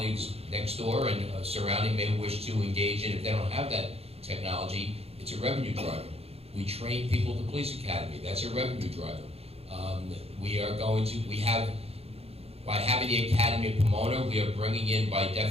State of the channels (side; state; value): left; late; 0.29 ms